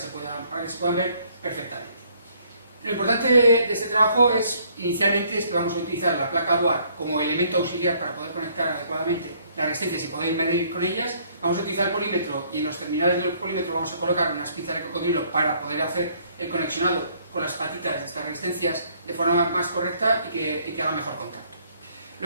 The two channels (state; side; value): inverted; both; correlation -0.64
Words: puedan ver perfectamente. Lo importante de este trabajo inicialmente es que vamos a utilizar la placa Bohr como elemento auxiliar para poder conectar adecuadamente las resistencias y poder medir con ellas. Vamos a utilizar el polímetro y en los terminales del polímetro vamos a colocar unas pinzas de cocodrilo para poder hacer el conexionado con las patitas de estas resistencias de forma más correcta y que haga mejor contacto.